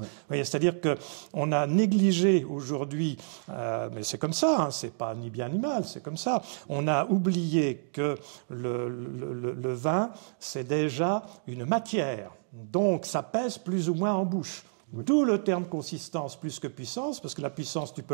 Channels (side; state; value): left; silent; digital silence